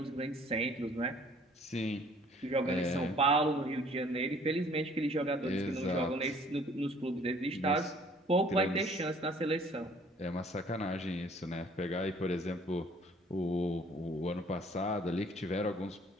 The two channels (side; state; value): both; normal; correlation 0.57